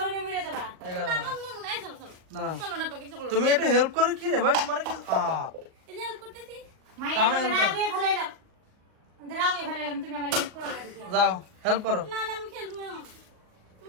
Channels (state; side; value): late; left; 38 ms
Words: মরে যাবা। এই গরমে। না না তুমি একটু হেল্প করো কি রে ভাই, তোমার কি মাইয়া কামে help করো। রাগে ফেলাইলাম, রাগে ফেলাইলাম, তুমি আমার হেল্প করো না দিদি। যাও হেল্প করো, না আমি খেলবো না।